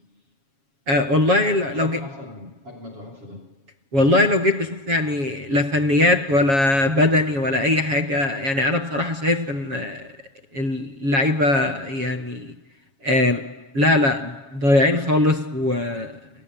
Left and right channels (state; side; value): late; left; 7.3 ms